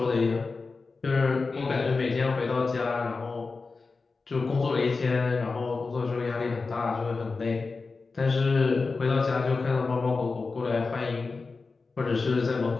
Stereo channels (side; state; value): right; quieter; 4.1 dB